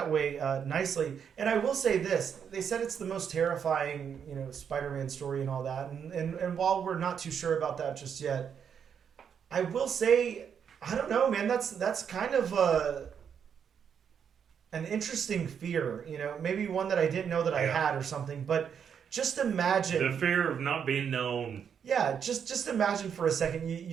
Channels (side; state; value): left; quieter; 7.6 dB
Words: way nicely. And I will say this: they said it's the most terrifying Spider-Man story and all that. And while we're not too sure about that just yet, I will say, I don't know, man. That's kind of an interesting fear, maybe one that I didn't know that I had or something. But just imagine the fear of not being known. Yeah, just imagine for a second.